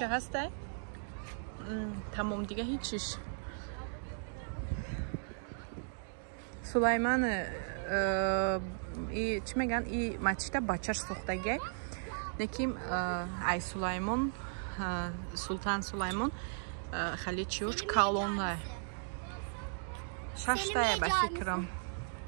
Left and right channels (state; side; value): silent; left; digital silence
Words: ҳастай? Тамом дига ҳеҷ чиш. Сулаймон чӣ мегӯян и масҷида бачаш сохтагай. Неки ай Сулаймон Султан Сулаймон Халичиуш колонна. Şaştaya be fikrim.